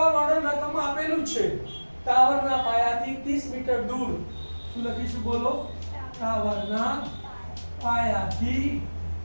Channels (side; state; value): both; inverted; correlation -1.00